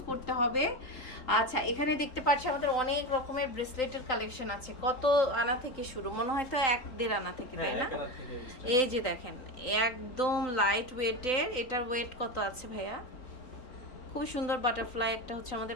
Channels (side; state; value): right; late; 3.9 ms